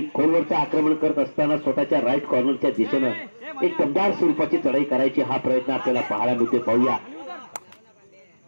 खोलवरचं आक्रमण करत असताना स्वतःच्या राईट कॉर्नरच्या दिशेनं एक दमदार स्वरूपाची चढाई करायची हा प्रयत्न आपल्याला पाहायला मिळते. पाहूया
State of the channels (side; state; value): both; inverted; correlation -1.00